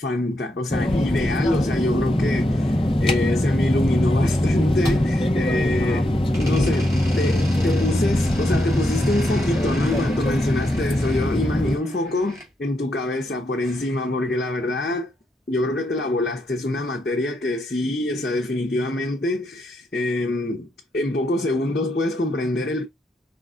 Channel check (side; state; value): both; normal; correlation 0.80